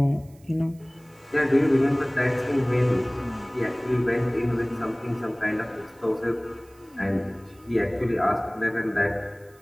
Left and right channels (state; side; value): noise; right; hiss, 30 dB below the sound